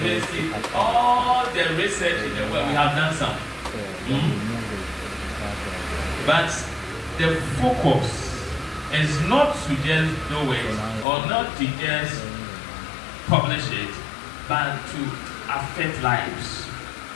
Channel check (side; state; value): right; drops out; at 11.1 s